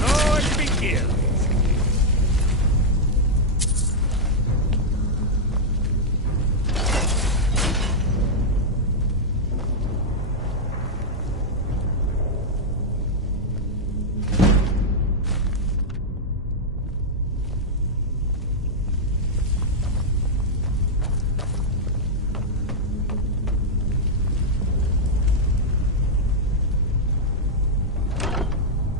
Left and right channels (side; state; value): both; normal; correlation -0.04